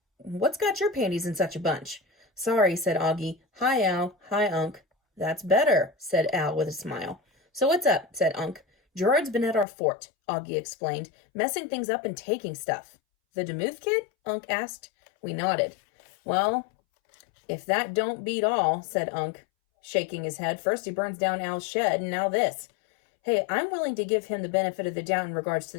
What's got your panties in such a bunch? Sorry, said Augie. Hi, Al. Hi, Unc. That's better, said Al with a smile. So what's up, said Unc. Gerard's been at our fort, Augie explained, messing things up and taking stuff. The Demuth kid? Unc asked. We nodded. Well, if that don't beat all, said Unc, shaking his head. First he burns down Al's shed, and now this. Hey, I'm willing to give him the benefit of the doubt in regards to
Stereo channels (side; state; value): right; drops out; at 9.7 s